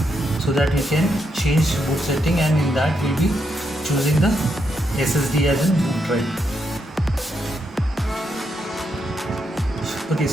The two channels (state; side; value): normal; both; correlation 0.81